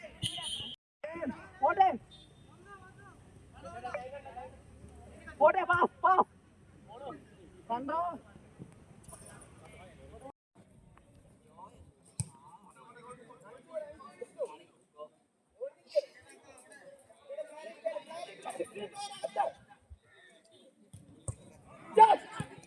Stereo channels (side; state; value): both; identical; correlation 1.00